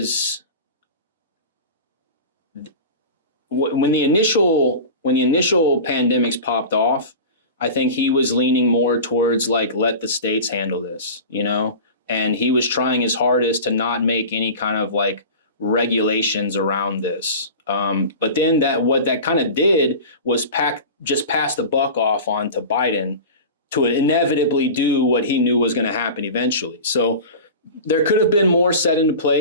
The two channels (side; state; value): both; inverted; correlation -0.32